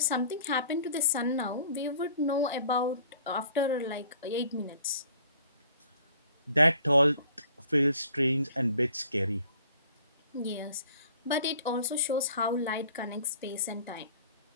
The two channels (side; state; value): both; inverted; correlation -0.53